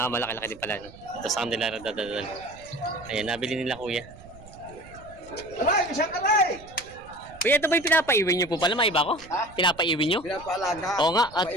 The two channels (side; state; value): right; noise; rumble, 20 dB below the sound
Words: din pala. Ito sa Candelaria dadadal. Ayan, nabili nila Kuya. Kuya, ito ba yung pinapaiwi nyo po pala? May iba ko? Pinapaiwi nyo? Pinapaalaga. Oo nga, at